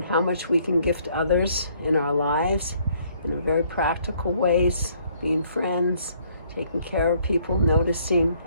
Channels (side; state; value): both; inverted; correlation -0.64